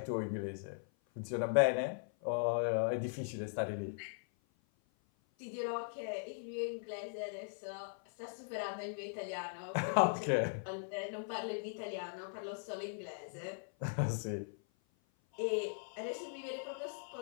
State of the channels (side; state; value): right; silent; 52 dB below the other